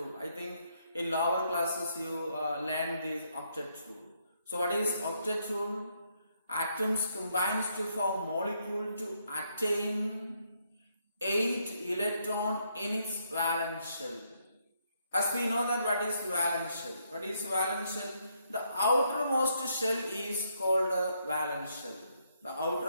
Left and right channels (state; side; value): inverted; both; correlation -0.75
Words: I think in lower classes you learn this octet rule. So, what is octet rule? Atoms combines to form molecule to attain 8 electron in its valence shell. As we know that what is valence shell? What is valence shell? The outermost shell is called a valence shell. The